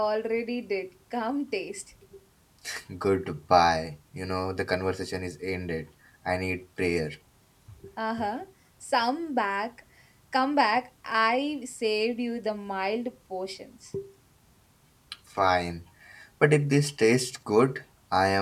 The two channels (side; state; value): both; identical; correlation 1.00